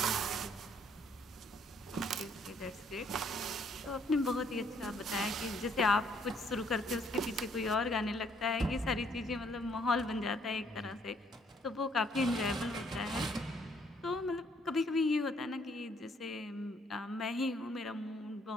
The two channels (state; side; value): normal; both; correlation 0.66